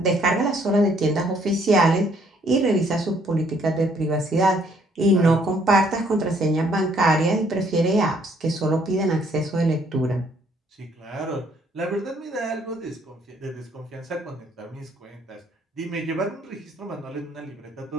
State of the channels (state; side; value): normal; both; correlation 0.65